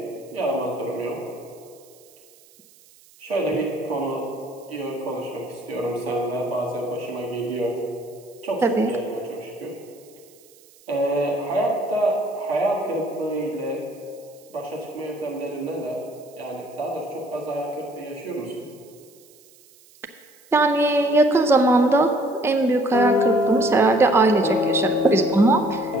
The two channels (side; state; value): right; noise; hiss, 27 dB below the sound